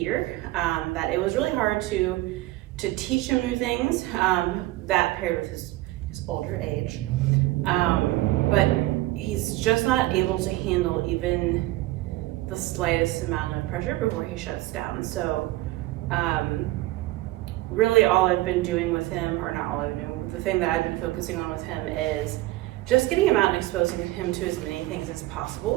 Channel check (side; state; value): left; quieter; 18.0 dB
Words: that it was really hard to teach him new things, that paired with his older age. But he's just not able to handle even the slightest amount of pressure before he shuts down. So really all I've been doing with him, or not all I've been doing, the thing that I've been focusing on with him is just getting him out and exposing him to as many things as